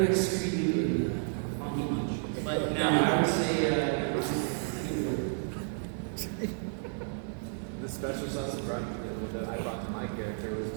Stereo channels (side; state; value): left; silent; 57 dB below the other